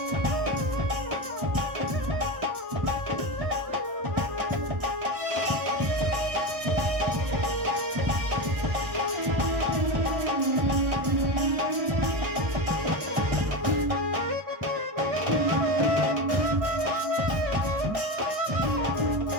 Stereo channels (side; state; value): left; late; 1.6 ms